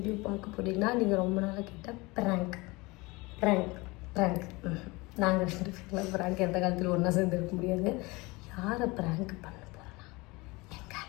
பார்க்க போகிறீங்கன்னா, நீங்கள் ரொம்ப நாளாக கேட்ட ப்ராங்க் நாங்கள் ரெண்டு பேர்லாம் ப்ராங்க் எந்த காலத்தில் ஒன்றா சேர்ந்து இருக்க முடியாது. யாரை ப்ராங்க் பண்ண போகிறோன்னா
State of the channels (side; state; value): right; quieter; 23.9 dB